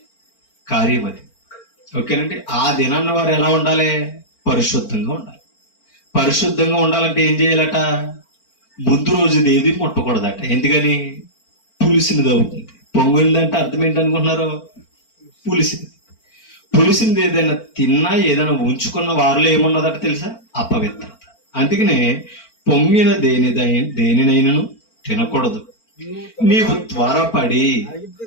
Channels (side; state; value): right; late; 4.4 ms